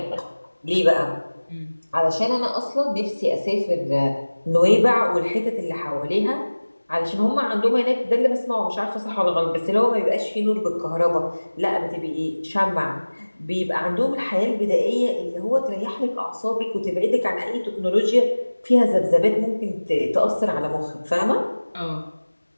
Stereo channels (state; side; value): inverted; both; correlation -1.00